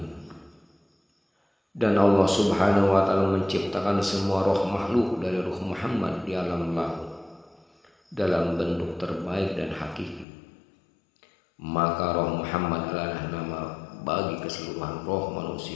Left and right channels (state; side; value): drops out; right; at 10.2 s